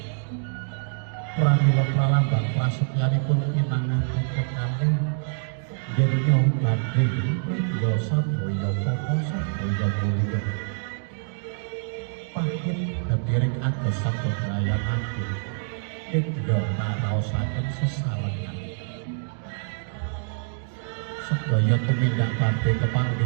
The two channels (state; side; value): silent; left; digital silence